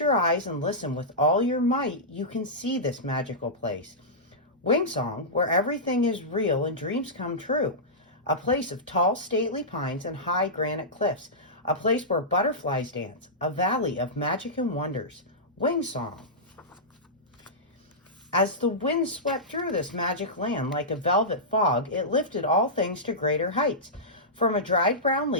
eyes and listen with all your might, you can see this magical place. Wingsong, where everything is real and dreams come true. A place of tall, stately pines and high granite cliffs. A place where butterflies dance. A valley of magic and wonders. Wingsong. As the wind swept through this magic land like a velvet fog, it lifted all things to greater heights. From a dried brown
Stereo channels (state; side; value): normal; both; correlation -0.15